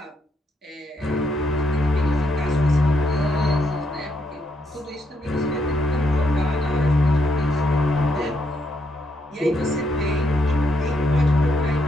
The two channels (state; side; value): normal; both; correlation 0.77